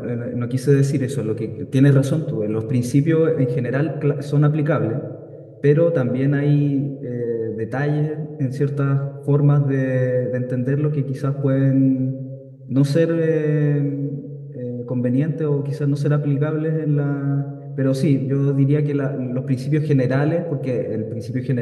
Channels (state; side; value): identical; both; correlation 1.00